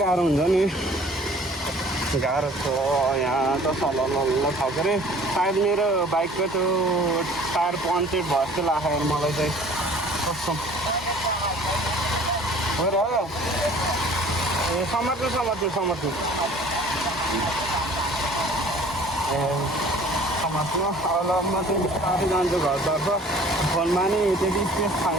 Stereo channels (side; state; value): both; normal; correlation 0.50